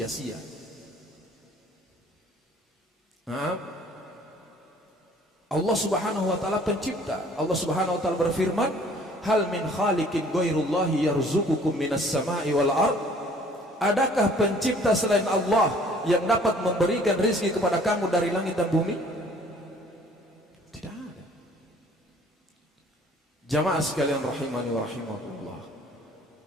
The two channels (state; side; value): normal; both; correlation 0.55